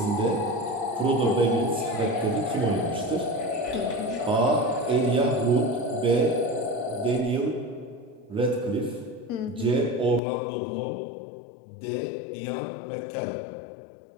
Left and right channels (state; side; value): drops out; right; at 10.2 s